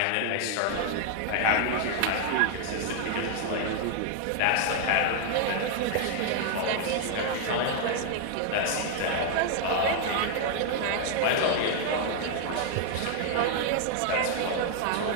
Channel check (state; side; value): different; both; correlation 0.00